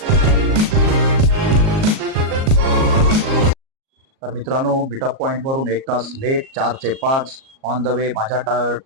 तर मित्रांनो, मीटअप पॉईंटवरून 1 तास लेट, 4 ते 5 ऑन द वे. माझ्या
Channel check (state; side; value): late; left; 38 ms